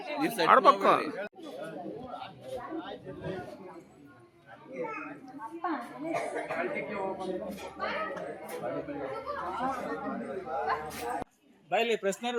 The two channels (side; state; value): both; identical; correlation 1.00